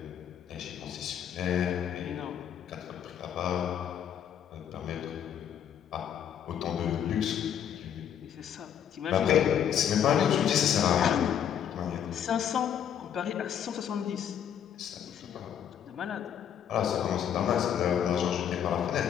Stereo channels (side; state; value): right; quieter; 9.1 dB